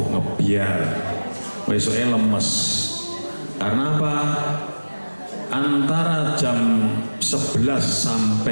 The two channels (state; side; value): inverted; both; correlation -1.00